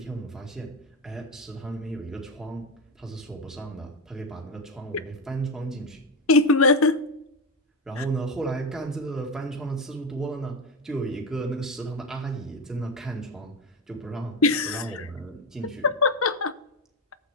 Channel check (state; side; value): normal; both; correlation 0.14